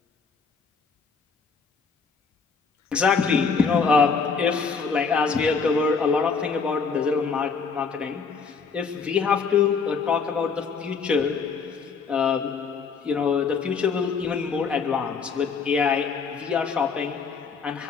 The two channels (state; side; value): quieter; right; 5.3 dB